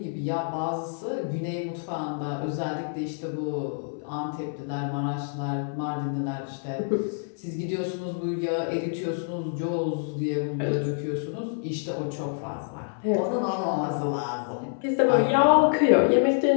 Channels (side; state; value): right; silent; 59 dB below the other